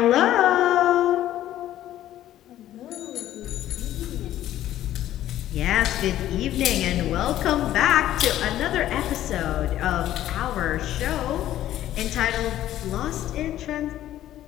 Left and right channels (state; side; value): quieter; right; 12.9 dB